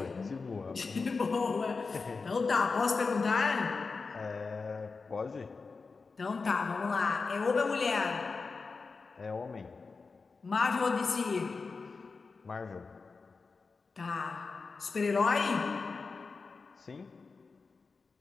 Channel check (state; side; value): quieter; right; 4.4 dB